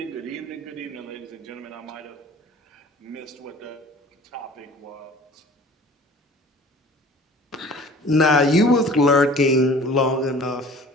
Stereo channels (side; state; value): both; normal; correlation 0.47